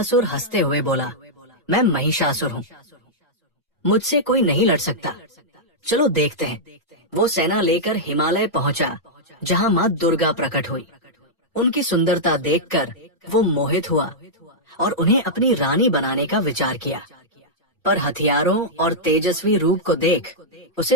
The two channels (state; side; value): normal; both; correlation -0.09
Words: हंसते हुए बोला, मैं महिषासुर हूँ, मुझसे कोई नहीं लड़ सकता। चलो देखते हैं। वो सेना लेकर हिमालय पहुंचा, जहाँ माँ दुर्गा प्रकट हुई। उनकी सुंदरता देखकर वो मोहित हुआ और उन्हें अपनी रानी बनाने का विचार किया। पर हथियारों और तेजस्वी रूप को देख